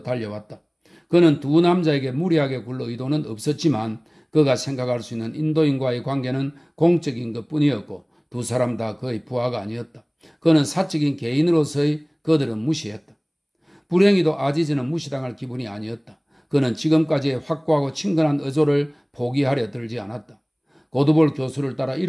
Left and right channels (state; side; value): identical; both; correlation 1.00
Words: 달려왔다. 그는 두 남자에게 무리하게 굴러 의도는 없었지만 그가 생각할 수 있는 인도인과의 관계는 공적인 것뿐이었고 두 사람 다 그의 부하가 아니었다. 그는 사적인 개인으로서의 그들은 무시했다. 불행히도 아지즈는 무시당할 기분이 아니었다. 그는 지금까지의 확고하고 친근한 의조를 포기하려 들지 않았다. 고두볼 교수를 따라